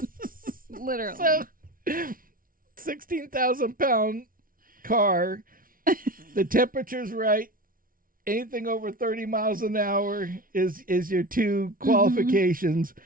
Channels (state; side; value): late; left; 0.41 ms